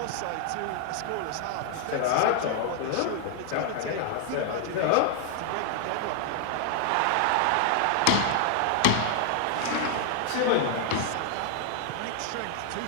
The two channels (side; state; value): both; different; correlation 0.00